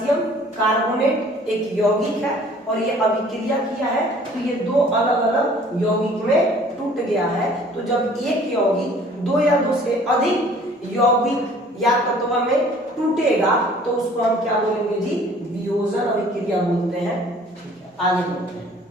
कार्बोनेट एक यौगिक है और ये अभिक्रिया किया है, तो ये 2 अलग अलग यौगिक में टूट गया है। तो जब एक यौगिक 2 या 2 से अधिक यौगिक या तत्व में टूटेगा तो उसको हम क्या बोलेंगे जी, वियोजन अभिक्रिया बोलते हैं। ठीक है, आगे बढ़ते हैं।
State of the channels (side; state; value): both; normal; correlation 0.53